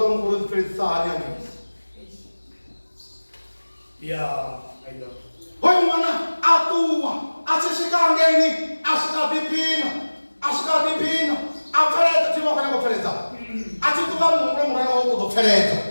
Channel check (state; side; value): inverted; both; correlation -1.00